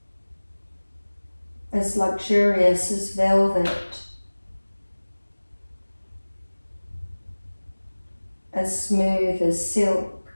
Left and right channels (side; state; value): both; inverted; correlation -1.00